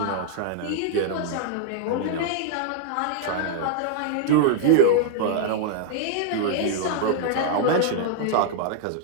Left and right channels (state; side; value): different; both; correlation -0.01